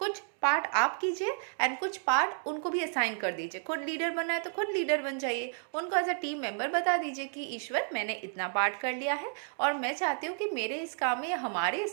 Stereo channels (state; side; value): silent; left; 57 dB below the other